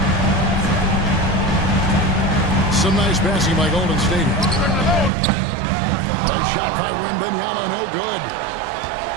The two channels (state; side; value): drops out; left; at 5.1 s